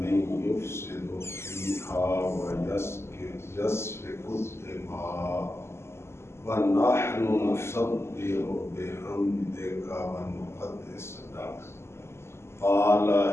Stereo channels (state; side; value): late; right; 0.12 ms